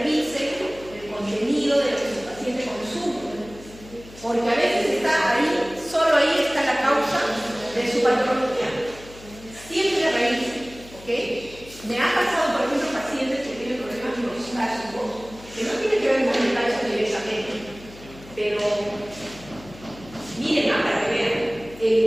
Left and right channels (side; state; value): left; noise; hum, 19 dB below the sound